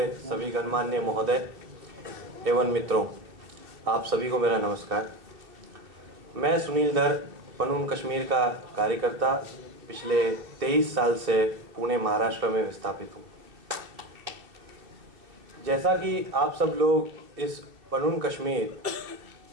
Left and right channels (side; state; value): left; late; 2.7 ms